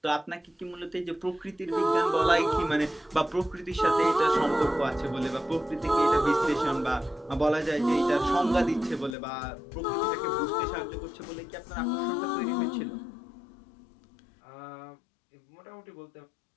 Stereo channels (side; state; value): right; drops out; at 9.2 s